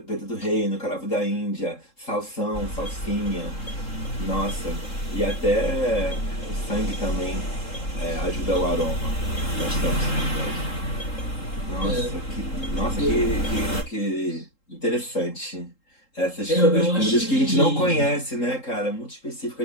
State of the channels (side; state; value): right; late; 3.8 ms